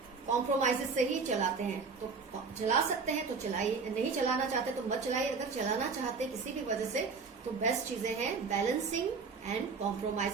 कॉम्प्रोमाइजेस से ही चलाते हैं, तो चला सकते हैं तो चलाइए, नहीं चलाना चाहते तो मत चलाइए। अगर चलाना चाहते किसी भी वजह से, तो बेस्ट चीजें हैं balancing and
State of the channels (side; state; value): left; quieter; 4.9 dB